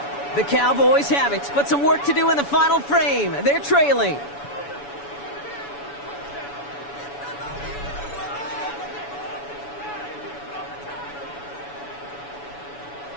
The Cowboys have it, but some work to do in the final frame. They're trailing.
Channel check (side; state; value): right; late; 7.0 ms